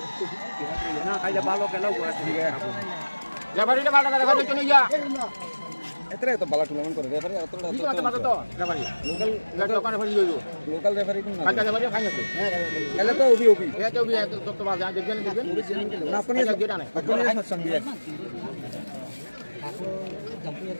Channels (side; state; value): both; inverted; correlation -1.00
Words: না খাইলে ভালো খেলাও করে ঠিক আছে রেফারিটা ভালো করে রেফারি চলে যা এতরে তো ভালো টুর্নামেন্ট করে রেফারি এতটা তো রেফারি লোকাল রেফারি হইলো লোকাল রেফারি কোন না কাটা রেফারি ফাইনাল তো এলে তো ওবি এটা তো বিয়া তো বাজ দেখবেন না আপনি আপনি সঙ্গে